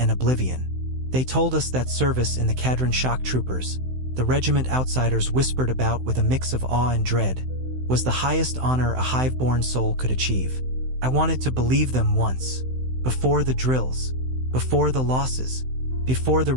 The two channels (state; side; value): late; left; 16 ms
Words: oblivion. They told us that service in the Cadian shock troopers, the regiment outsiders whispered about with a mix of awe and dread, was the highest honor a hive-born soul could achieve. I wanted to believe them once, before the drills, before the losses, before the